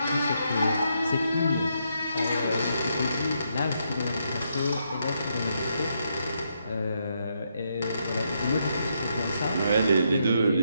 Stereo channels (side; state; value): both; inverted; correlation -0.78